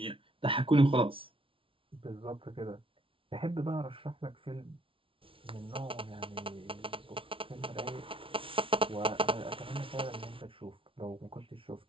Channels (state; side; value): late; left; 0.25 ms